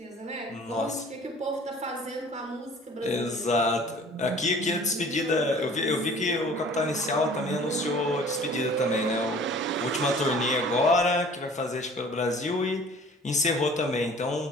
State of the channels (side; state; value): both; normal; correlation 0.49